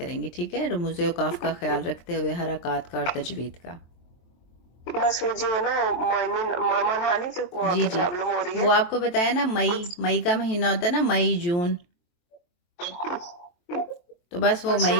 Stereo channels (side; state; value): right; late; 23 ms